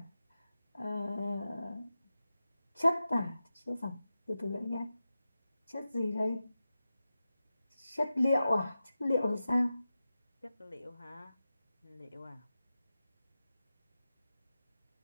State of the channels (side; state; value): both; inverted; correlation -0.93